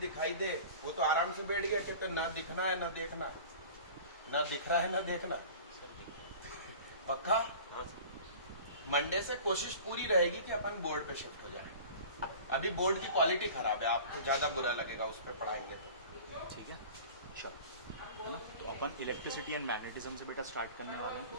दे। वो तो आराम से बैठ गया, कहते ना दिखना है ना देखना, ना दिख रहा है ना देखना। पक्का? मंडे से कोशिश पूरी रहेगी कि अपन बोर्ड पे शिफ्ट हो जाए। अभी बोर्ड की क्वालिटी खराब है, आपको ज्यादा बुरा लगेगा उस पर पढ़ाएंगे तो। ठीक है, चलो, है ना। तो अपन इलेक्ट्रिसिटी एंड मैग्नेटिज्म से बेटा स्टार्ट करने वाले हैं।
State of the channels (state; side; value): inverted; both; correlation -0.40